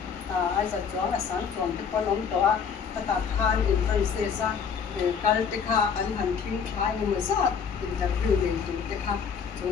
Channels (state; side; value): quieter; right; 6.6 dB